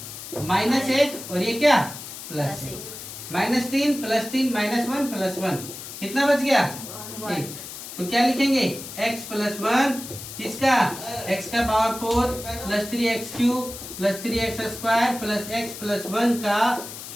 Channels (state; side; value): noise; left; hiss, 11 dB below the sound